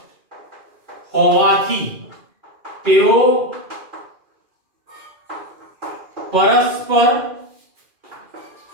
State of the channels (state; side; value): late; left; 2.4 ms